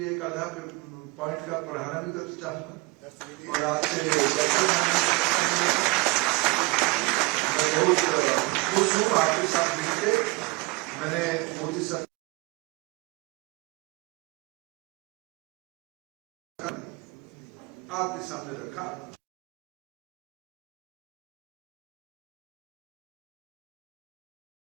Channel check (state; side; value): quieter; left; 24.7 dB